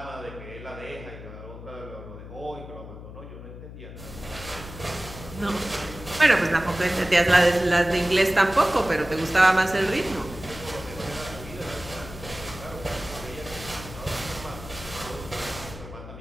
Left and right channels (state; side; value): noise; left; hum, 13 dB below the sound